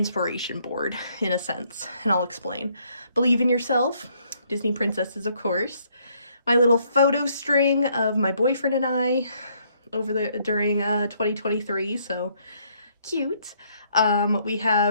board in a sense, and I'll explain. Believe in Yourself, Disney princesses, of course. My little photo string of my boyfriend and I during 2023, so cute. We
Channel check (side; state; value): both; inverted; correlation -0.68